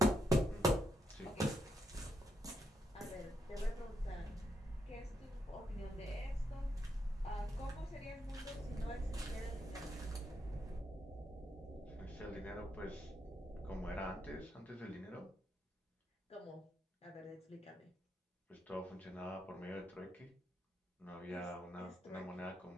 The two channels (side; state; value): both; normal; correlation 0.80